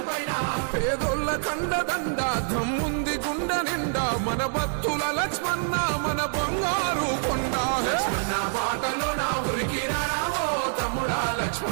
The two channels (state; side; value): silent; left; 61 dB below the other